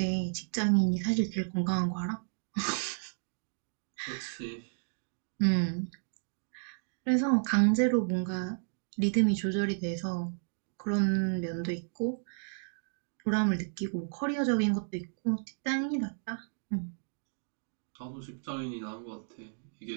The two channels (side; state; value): left; silent; digital silence